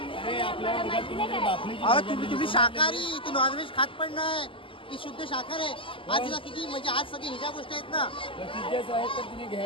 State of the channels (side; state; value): right; late; 0.25 ms